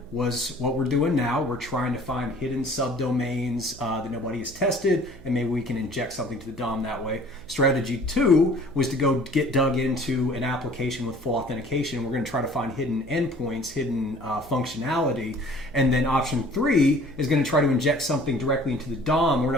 was what we're doing now. We're trying to find hidden subdomains that nobody has tested, and maybe we can inject something to the DOM that way. Strategy two was to go get dug into an application with full authentication. We're going to try to find hidden endpoints, hidden functionality. And then option three is going to try to inject something directly into the DOM. We're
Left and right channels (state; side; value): noise; right; hum, 19 dB below the sound